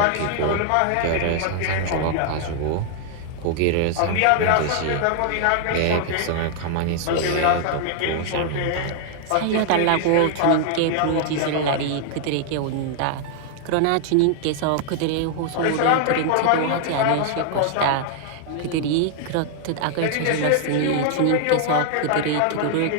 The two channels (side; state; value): both; different; correlation 0.00